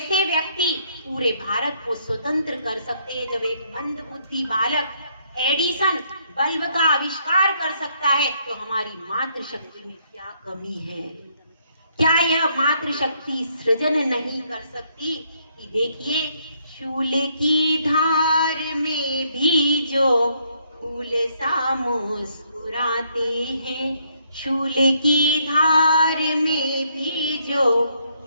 व्यक्ति पूरे भारत को स्वतंत्र कर सकते हैं, जब एक मंदबुद्धि बालक एडिसन बल्ब का आविष्कार कर सकता है, तो हमारी मातृशक्ति में क्या कमी है? क्या यह मातृशक्ति सृजन नहीं कर सकती? कि देखिए, शूल की धार में भी जो फूल सा मुस्कुराते हैं, शूल की धार में भी जो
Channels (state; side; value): inverted; both; correlation -0.71